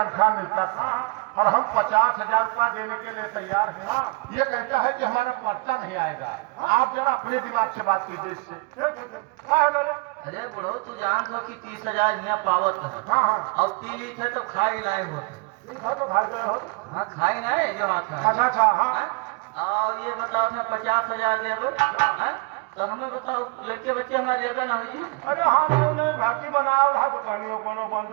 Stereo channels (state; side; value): quieter; left; 27.9 dB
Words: मिलता था और हम 50,000 रुपया देने के लिए तैयार हैं। ये कहता है कि हमारा पर्चा नहीं आएगा। आप जरा अपने दिमाग से बात कीजिए इससे। अरे बुढ़ो तू जान लो कि 30,000 यहाँ पावत है। हाँ अब पी ली थे तो खाई लाए होते। तो भाई गए हो। हाँ खाई नहीं जो हाथ है। अच्छा हाँ। और ये बताओ मैं 50,000 देबो तो हमें बताओ लड़के बच्चे हमारे लेगा ना हुई। अरे हमने भर्ती बनाया रहा तो कहानियों कोनो